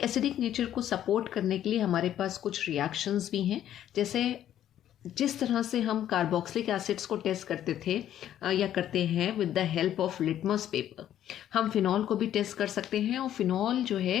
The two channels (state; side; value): quieter; right; 11.3 dB